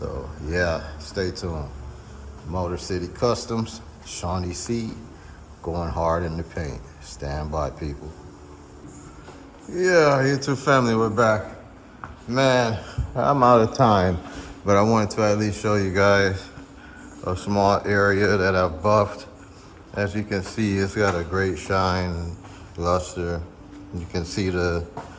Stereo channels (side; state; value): both; identical; correlation 1.00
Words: yeah, stay tuned. Motor City Customs, Shawnee C, going hard in the paint. Stand by, people. Yeah, YouTube family, we're back. Man, I'm out of time, but I wanted to at least show you guys a small area that I've buffed. As you can see, it's got a great shine and luster. You can see the